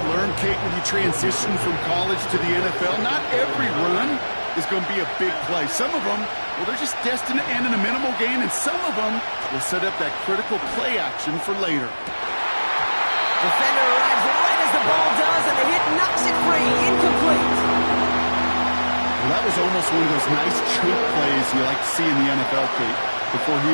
learn, Kate, when you transition from college to the NFL, not every run is going to be a big play. Some of them, well, they're just destined to end in a minimal gain, and some of them will set up that critical play action for later. Defender arrives right as the ball does, and the hit knocks it free. Incomplete. Well, that was almost one of those nice choke plays you like to see in the NFL, Kate, before he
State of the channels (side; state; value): both; inverted; correlation -1.00